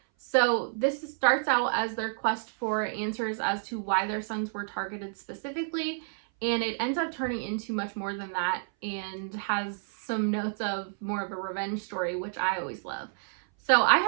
So this starts out as their quest for answers as to why their sons were targeted specifically, and it ends up turning into much more than that and has some notes of more of a revenge story, which I always love. So I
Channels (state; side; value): silent; left; 58 dB below the other